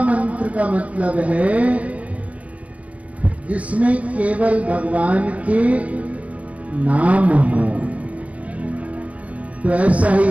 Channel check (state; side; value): late; left; 0.066 ms